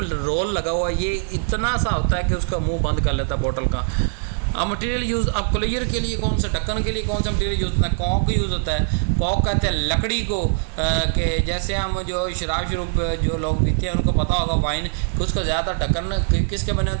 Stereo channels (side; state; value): left; silent; digital silence